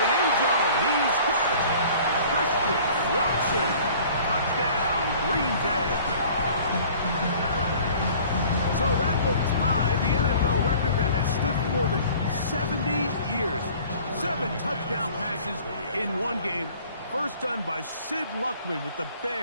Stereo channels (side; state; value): both; inverted; correlation -0.49